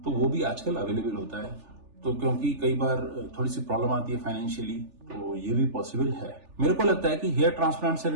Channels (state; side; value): late; left; 3.4 ms